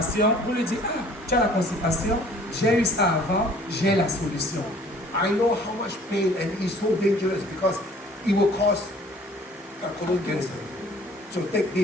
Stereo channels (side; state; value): both; normal; correlation 0.53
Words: vous lui dites ah, tu as la constipation, j'ai eu ça avant, j'ai la solution. I know how much pain and it's so dangerous because it will cause colon cancer. So take